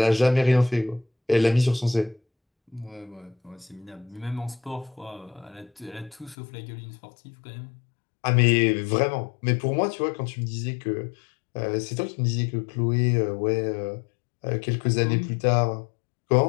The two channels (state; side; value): drops out; right; at 6.4 s